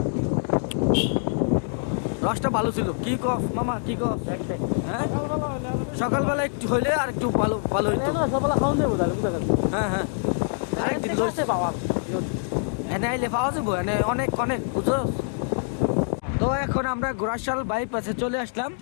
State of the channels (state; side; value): silent; right; 61 dB below the other